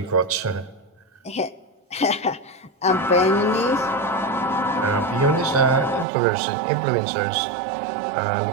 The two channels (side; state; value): left; drops out; at 6.1 s